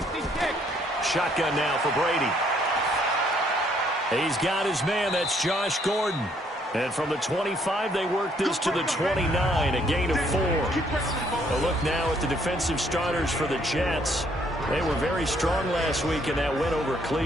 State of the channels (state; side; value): normal; both; correlation 0.67